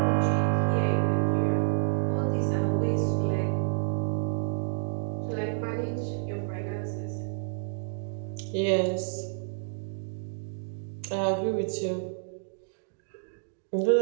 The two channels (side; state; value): left; silent; digital silence